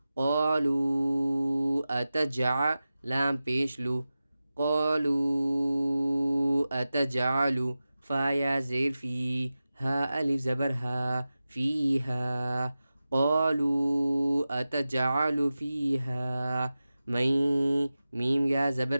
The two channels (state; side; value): inverted; both; correlation -0.94